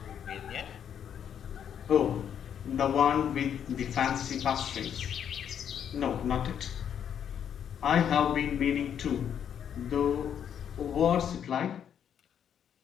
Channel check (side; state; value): right; quieter; 8.8 dB